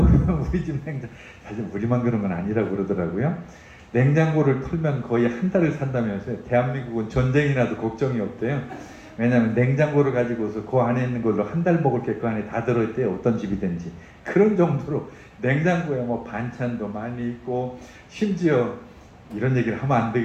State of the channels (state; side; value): identical; both; correlation 1.00